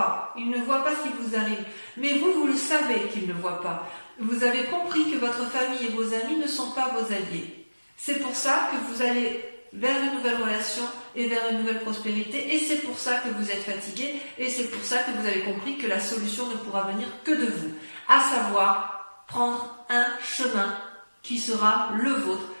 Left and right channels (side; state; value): both; inverted; correlation -1.00